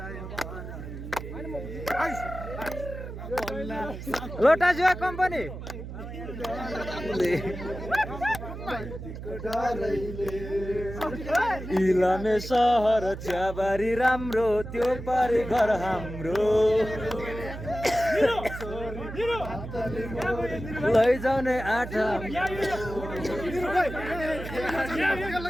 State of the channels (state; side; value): noise; right; hum, 10 dB below the sound